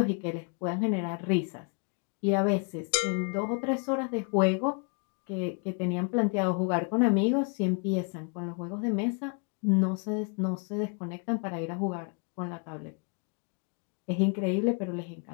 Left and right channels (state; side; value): quieter; right; 37.4 dB